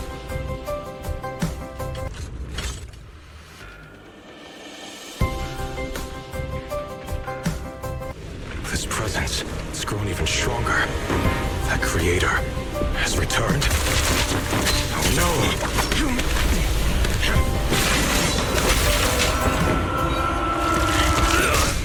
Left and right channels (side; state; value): both; identical; correlation 1.00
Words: This presence, it's grown even stronger. That creator has returned. Oh no!